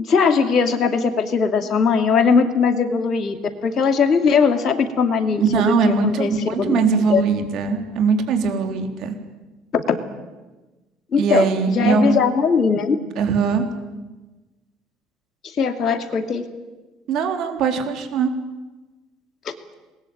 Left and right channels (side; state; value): both; normal; correlation 0.57